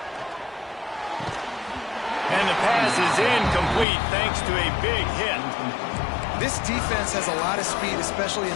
And the pass is incomplete thanks to a big hit. This defense has a lot of speed, especially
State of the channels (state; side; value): drops out; right; at 3.9 s